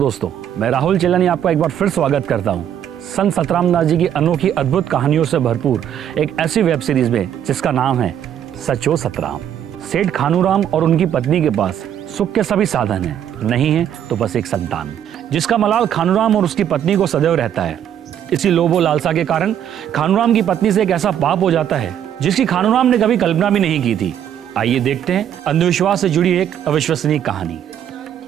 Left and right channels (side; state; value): left; quieter; 9.9 dB